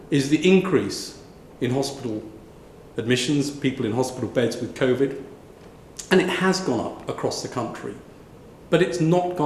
is the increase in hospital admissions, people in hospital beds with COVID, and it has gone up across the country, but it's not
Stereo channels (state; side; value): identical; both; correlation 1.00